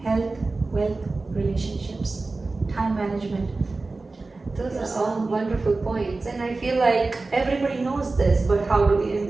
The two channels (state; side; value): quieter; left; 3.5 dB